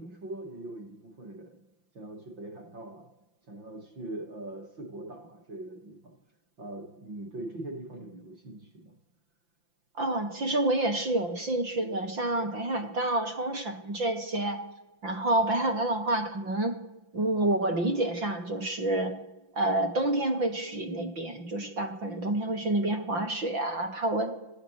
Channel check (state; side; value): late; left; 5.8 ms